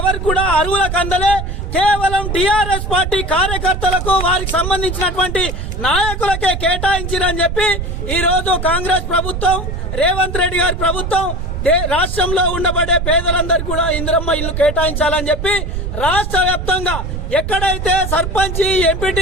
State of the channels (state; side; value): noise; right; rumble, 4 dB below the sound